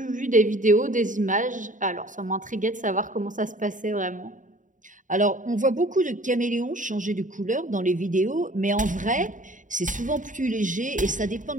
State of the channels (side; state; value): left; late; 0.37 ms